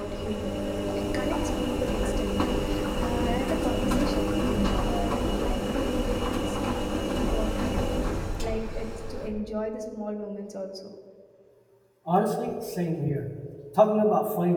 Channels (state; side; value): identical; both; correlation 1.00